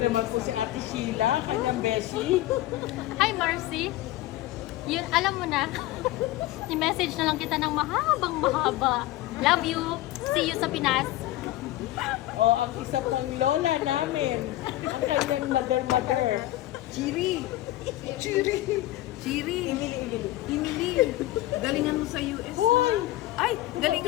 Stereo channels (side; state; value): right; quieter; 15.9 dB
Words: po si Ate Sheila, kanyang beshi. Hi, Marcy. Yun, alam mo na. I-message na lang kita ng mahaba. Love you. See you sa Pinas. O, ang isa pang lola namin, ang kanyang mother. Chiri. Emily, galingan mo sa US Hoy! ha? Ay,